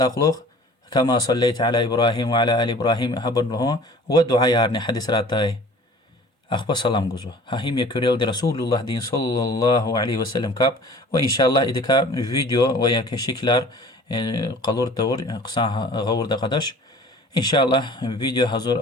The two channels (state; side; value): normal; both; correlation 0.47